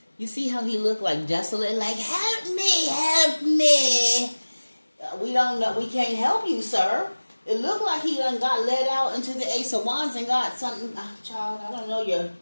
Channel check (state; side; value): inverted; both; correlation -1.00